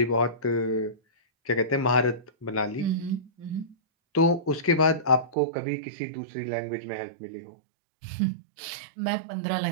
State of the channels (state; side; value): drops out; left; at 5.4 s